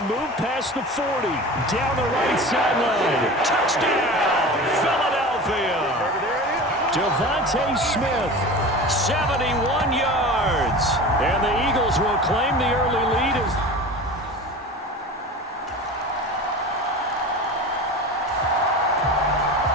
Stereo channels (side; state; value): both; normal; correlation 0.34